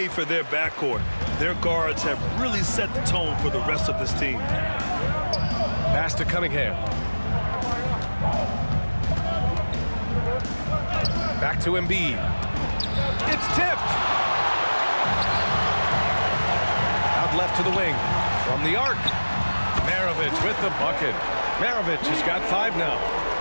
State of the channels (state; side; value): inverted; both; correlation -1.00